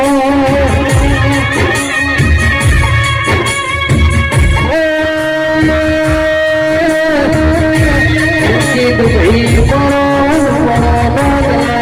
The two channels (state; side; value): identical; both; correlation 1.00